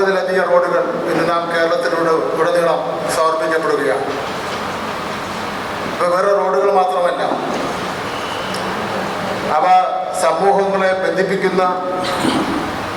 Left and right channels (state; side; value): identical; both; correlation 1.00